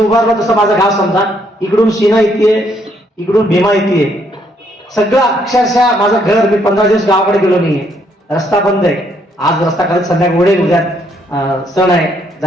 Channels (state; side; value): normal; both; correlation 0.71